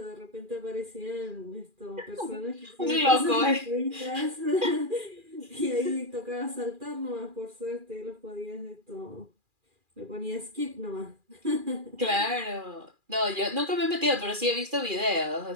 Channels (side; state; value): left; late; 2.4 ms